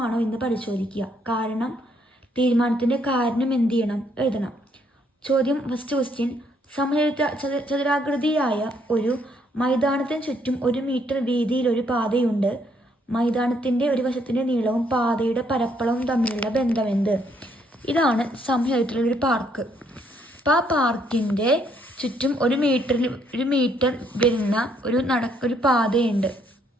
എന്ന് പരിശോധിക്കുക. തീരുമാനത്തിൻ്റെ കാരണം എന്ത് ചെയ്യണം? എഴുതണം. ചോദ്യം ഫസ്റ്റ് ക്വസ്റ്റ്യൻ. ചതുരാകൃതിയായ ഒരു മൈതാനത്തിന് ചുറ്റും 1 മീറ്റർ വീതിയിൽ ഒരു പാതയുണ്ട്. മൈതാനത്തിൻ്റെ ഒരു വശത്തിൻ്റെ നീളവും പാതയുടെ പരപ്പളവും തമ്മിലുള്ള ബന്ധമെന്ത്? ഇതാണ് സമചതുരത്തിലുള്ളൊരു പാർക്ക്. അപ്പോൾ ആ പാർക്കിൻ്റെ ചുറ്റും 1 മീറ്റർ വരുന്ന ഒരു പാതയുണ്ട്.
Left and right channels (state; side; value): normal; both; correlation 0.70